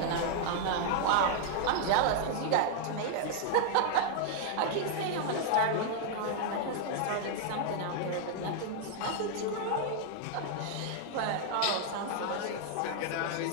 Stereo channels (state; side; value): different; both; correlation 0.00